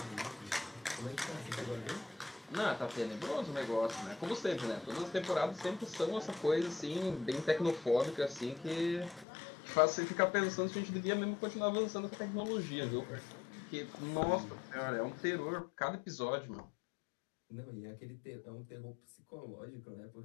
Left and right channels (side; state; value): right; drops out; at 9.2 s